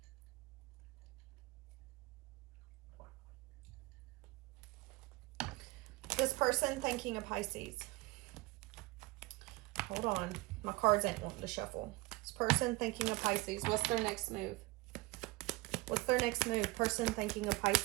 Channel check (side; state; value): left; quieter; 21.5 dB